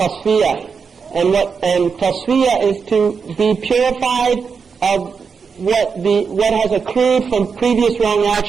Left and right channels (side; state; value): left; quieter; 5.7 dB